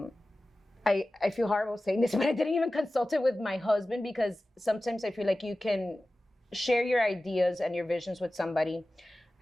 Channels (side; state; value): both; normal; correlation 0.96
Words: feel horrible saying this, but I didn't even consult it with my husband because sometimes I feel like you can share your ideas and your visions with somebody.